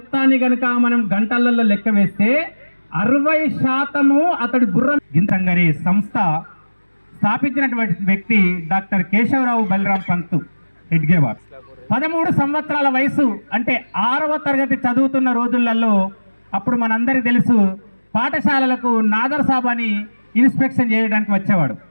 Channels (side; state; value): both; inverted; correlation -1.00